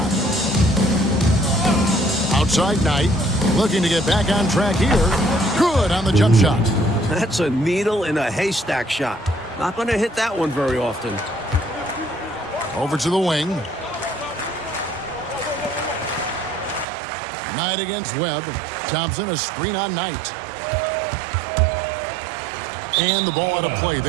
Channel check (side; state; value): left; drops out; at 16.9 s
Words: Outside Knight, looking to get back on track here. Good on the jump shot. That's a needle in a haystack shot. Not going to hit that one very often. Over to the wing. Knight against Webb. Thompson, a screen on Knight. And the ball out of play.